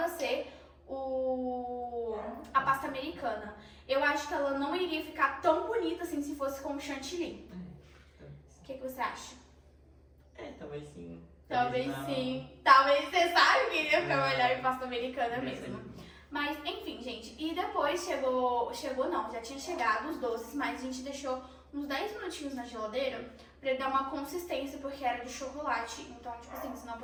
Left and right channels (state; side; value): identical; both; correlation 1.00